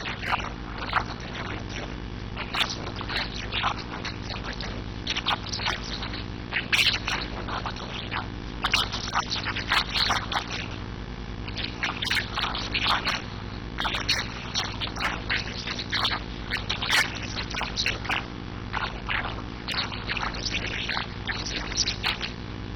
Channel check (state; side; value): identical; both; correlation 1.00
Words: യഥാർത്ഥത്തിൽ ഇവരെത്തിയത്. എന്നാ സുഹൃത്തുക്കളെ, ഈ വാദം കൊണ്ട് എന്ത് സംഭവിച്ചോ? ഇതിപ്പോ അബ്ദുസ്സലാം സുല്ലമി 2006 കൊണ്ടുവന്ന തൗഹീദാ. പക്ഷെ അബ്ദുസ്സലാം സുല്ലമിക്ക് അതിലൊരു ആത്മാർത്ഥത ഉണ്ട്. ജിന്നും മലക്കും അഭൗതികാണ്, അവരിന് എന്ത് ഉപദ്രവം ഉണ്ടെന്ന് വിശ്വസിച്ചാലും എന്ത് ഉപകാരം ഉണ്ടെന്ന് വിശ്വസിച്ചാലും ശിർക്കാണ്. അതാ മൂപ്പരവാദം. അതുകൊണ്ട് മൂപ്പര് പറഞ്ഞു സിഹിറില്ല. കാരണം സിഹിറിൽ ശൈത്താണ്ട്.